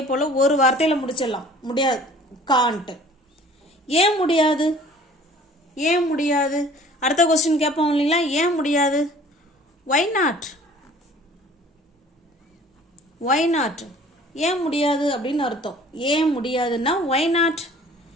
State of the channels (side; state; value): both; normal; correlation 0.50